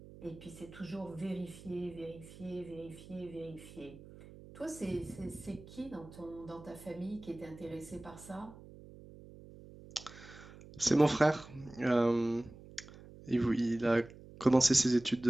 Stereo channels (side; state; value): right; noise; hum, 18 dB below the sound